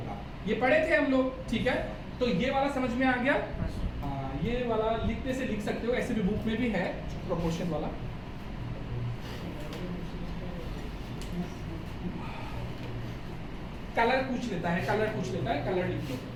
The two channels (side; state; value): both; identical; correlation 1.00